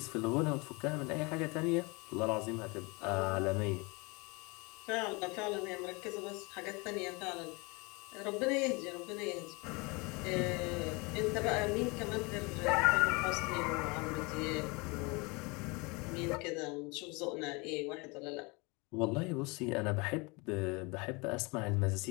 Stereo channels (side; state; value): right; quieter; 27.8 dB